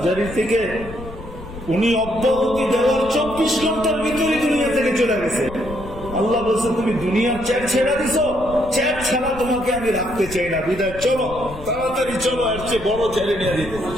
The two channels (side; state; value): left; noise; rumble, 14 dB below the sound